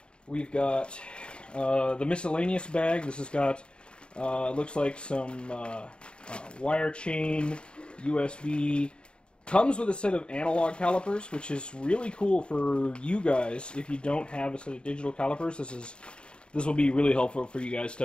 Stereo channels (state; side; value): late; right; 0.053 ms